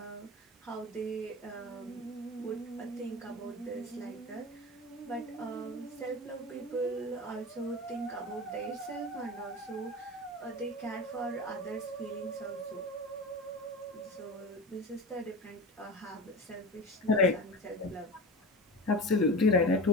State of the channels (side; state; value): both; normal; correlation 0.29